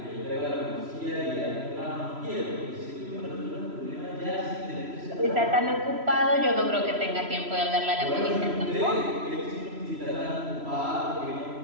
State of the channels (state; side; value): late; left; 3.0 ms